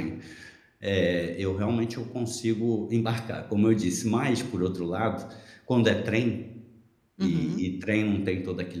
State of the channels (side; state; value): both; identical; correlation 1.00